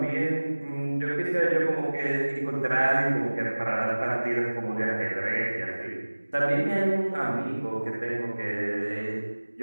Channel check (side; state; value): both; inverted; correlation -1.00